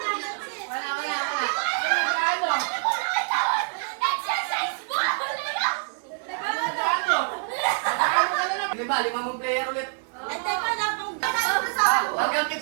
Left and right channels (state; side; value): silent; left; 61 dB below the other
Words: Wala. Exercise ball! Lima mong player ulit. At teka lang, kung gano'n sa Hanggang